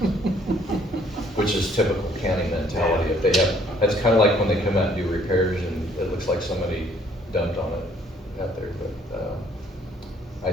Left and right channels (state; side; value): normal; both; correlation 0.62